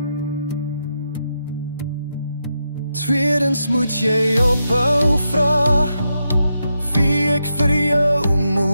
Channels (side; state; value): both; inverted; correlation -0.84